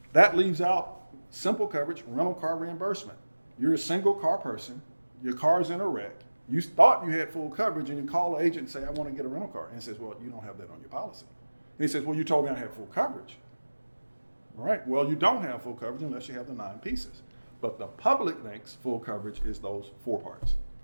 That leaves out simple coverage, rental car reimbursement. You're a single car person, your car's in a wreck, you thought you had full coverage, and you call the agent and say, "I want to get a rental car." And he says, "Well, you don't have that on your policy." And he says, "Well, you told me I had full coverage." All right, well, you don't have full coverage unless you have the 9 pieces. But the public thinks full coverage is those 4 parts.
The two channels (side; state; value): both; inverted; correlation -1.00